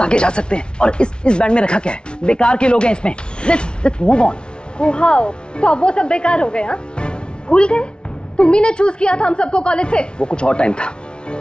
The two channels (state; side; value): late; right; 0.056 ms